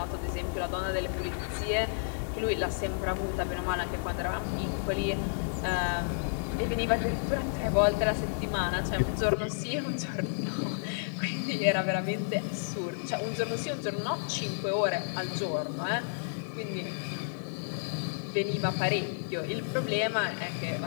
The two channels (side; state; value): right; silent; digital silence